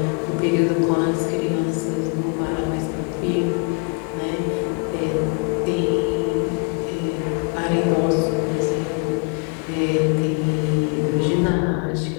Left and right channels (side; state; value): right; quieter; 38.1 dB